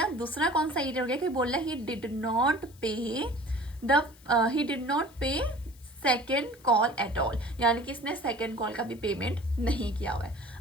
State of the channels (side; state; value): left; noise; hiss, 26 dB below the sound